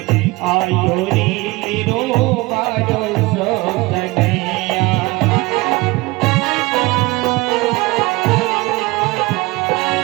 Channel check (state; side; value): quieter; left; 22.4 dB